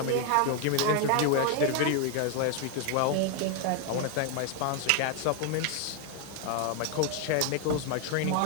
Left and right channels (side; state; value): both; different; correlation 0.01